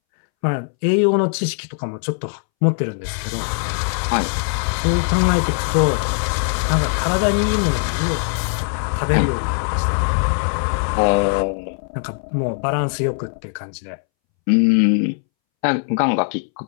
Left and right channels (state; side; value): silent; right; 64 dB below the other